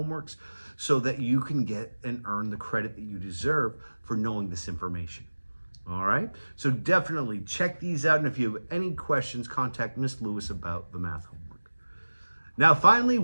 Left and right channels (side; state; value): both; inverted; correlation -1.00